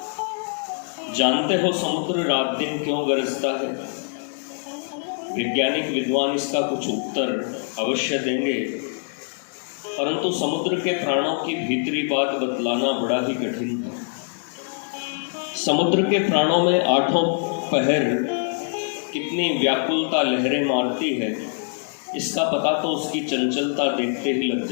जानते हो समुद्र रात दिन क्यों गरजता है? वैज्ञानिक विद्वान इसका कुछ उत्तर अवश्य देंगे, परंतु समुद्र के प्राणों की भीतरी बात बतलाना बड़ा ही कठिन है। समुद्र के प्राणों में आठों पहर कितनी व्याकुलता लहरें मारती है, इसका पता तो उसकी चंचलता देखते ही लग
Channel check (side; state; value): right; silent; 63 dB below the other